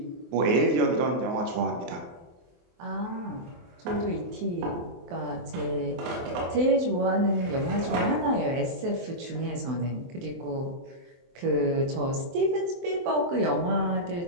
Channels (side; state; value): left; late; 23 ms